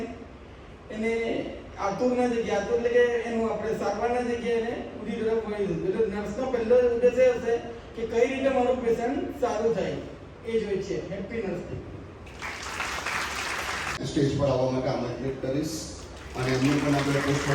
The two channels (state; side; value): identical; both; correlation 1.00